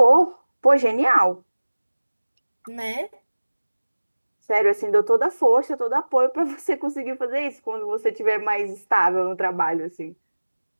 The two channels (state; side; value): inverted; both; correlation -1.00